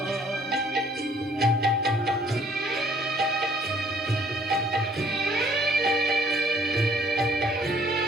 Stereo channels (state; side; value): normal; both; correlation 0.61